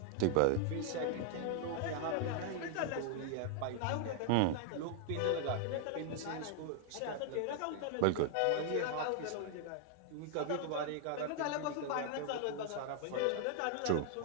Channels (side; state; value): both; different; correlation -0.01